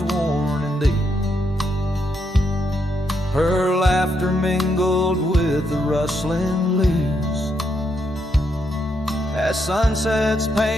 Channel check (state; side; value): normal; both; correlation 0.79